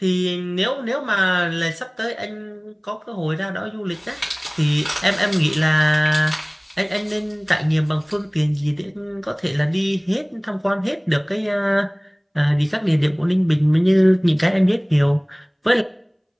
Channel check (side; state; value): both; identical; correlation 1.00